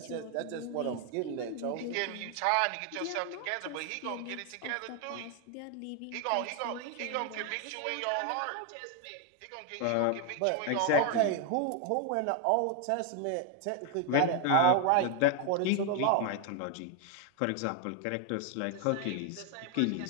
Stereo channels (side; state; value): both; different; correlation 0.01